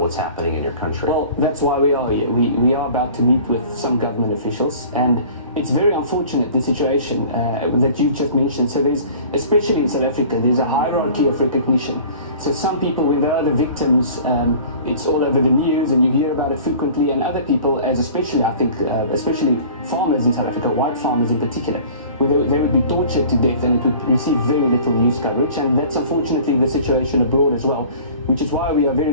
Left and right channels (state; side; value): inverted; both; correlation -0.45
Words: what's happening in your country? Well, that's why we are here. We are about to meet with some government officials, and it's very unfortunate, the situation that you just mentioned. So there's, especially in South Africa, there's a hierarchy of recognition. So some people, when they are the victims, it's all over the news and you hear about it frequently, and other people, as especially, I think, especially farmers in South Africa, white farmers in particular, where they would be tortured to death and it would receive very little news coverage, and that's unfortunately the situation abroad as well, which is why we are very